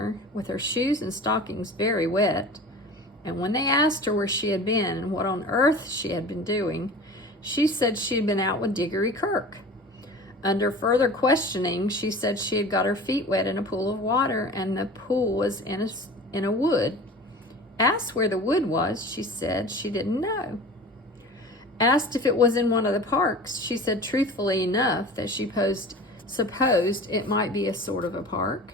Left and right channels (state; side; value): normal; both; correlation 0.38